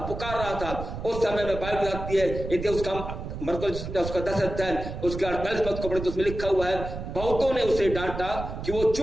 रहा था, उस समय में बाइबल बताती है, यदि उसका 10 अध्याय उसके 48 पद को पढ़े तो उसमें लिखा हुआ है, बहुतों ने उसे डांटा कि वो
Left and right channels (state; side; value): noise; right; rumble, 7 dB below the sound